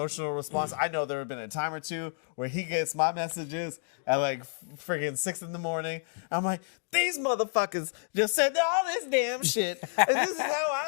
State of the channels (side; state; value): right; silent; digital silence